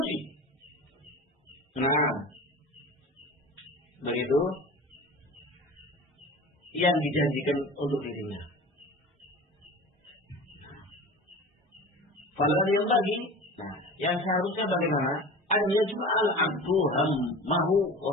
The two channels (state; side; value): normal; both; correlation 0.36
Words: Nah, begitu yang dijanjikan untuk dirinya. Falah yang bagi, nah, yang seharusnya bagaimana? Ada cuma al-abdu hammahu wa